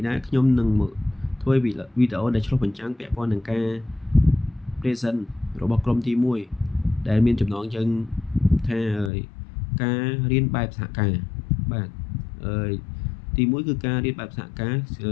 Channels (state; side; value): drops out; right; at 9.1 s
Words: ដែរខ្ញុំនឹងមកធ្វើវីដេអូដែលឆ្លុះបញ្ចាំងពាក់ព័ន្ធនឹងការ present របស់ក្រុមទី1ដែលមានចំណងជើងថាការរៀនបែបសហការបាទទី1គឺការរៀនបែបសហការ